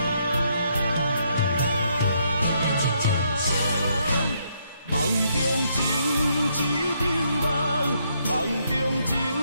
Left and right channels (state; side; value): inverted; both; correlation -0.73